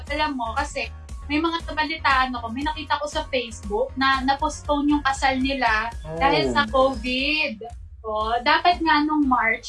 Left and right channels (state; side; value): identical; both; correlation 1.00